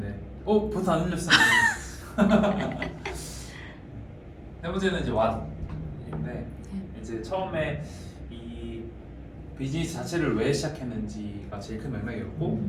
버튼 안 눌렸어. 세 번째는 이제 왓인데 이제 처음에 이 비즈니스 자체를 왜 시작했는지가 제일 큰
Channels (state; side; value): identical; both; correlation 1.00